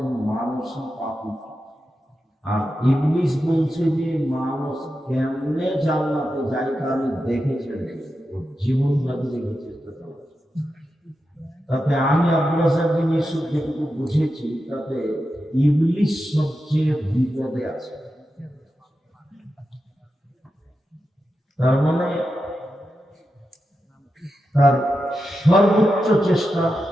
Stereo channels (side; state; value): both; normal; correlation 0.89